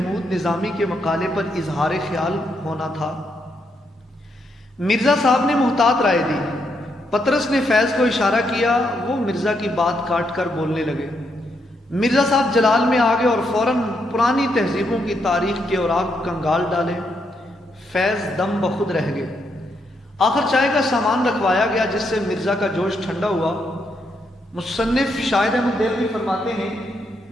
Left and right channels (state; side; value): normal; both; correlation 0.78